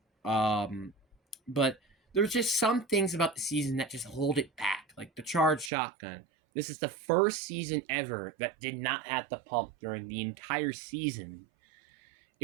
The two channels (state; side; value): drops out; left; at 5.7 s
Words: But there's just some things about the season that just hold it back, like the Charged Shotgun. This is the first season ever that did not have the pump during the entire season.